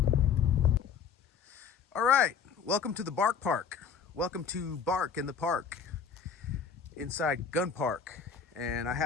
All right, welcome to the Bark Park. Welcome to Bark in the Park, inside Gunn Park. And I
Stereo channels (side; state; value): right; quieter; 6.4 dB